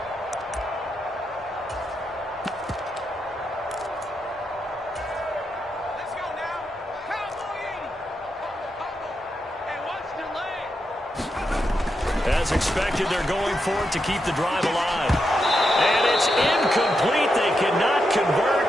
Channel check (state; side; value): normal; both; correlation 0.84